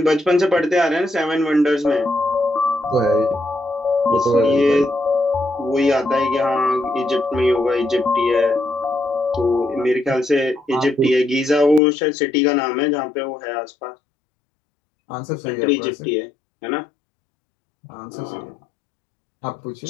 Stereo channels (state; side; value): drops out; right; at 11.8 s